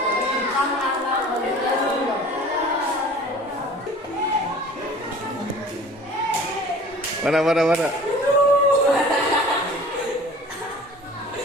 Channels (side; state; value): both; normal; correlation 0.45